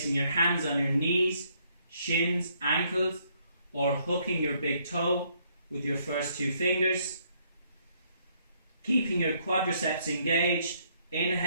your hands on your knees, shins, ankles, or hooking your big toe with your first two fingers. Keeping your quadriceps engaged.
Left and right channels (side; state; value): both; inverted; correlation -0.69